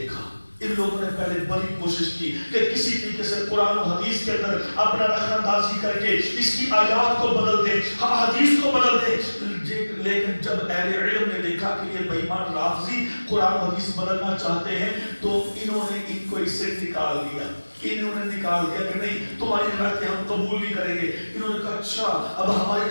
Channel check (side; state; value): both; inverted; correlation -1.00